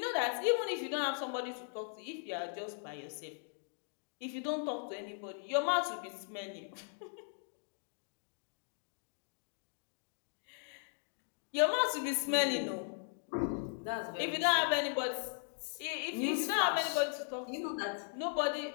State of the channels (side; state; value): right; silent; 52 dB below the other